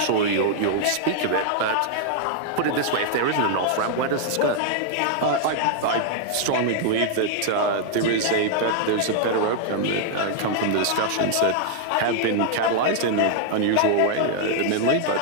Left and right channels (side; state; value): both; different; correlation 0.00